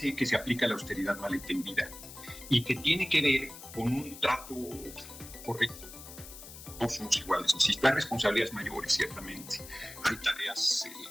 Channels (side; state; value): left; noise; hiss, 14 dB below the sound